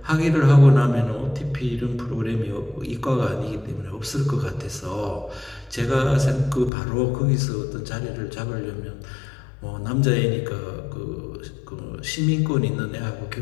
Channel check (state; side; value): drops out; right; at 6.7 s